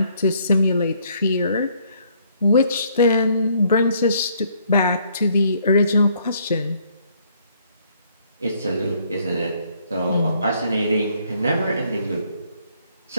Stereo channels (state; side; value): inverted; both; correlation -0.66